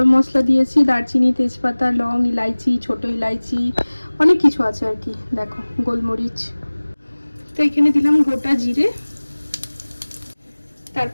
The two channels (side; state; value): both; inverted; correlation -1.00